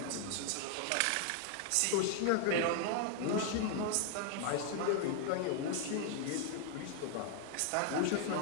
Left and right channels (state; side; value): different; both; correlation 0.00